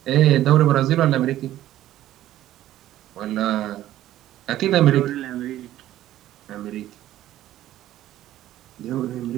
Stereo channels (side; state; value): left; quieter; 13.6 dB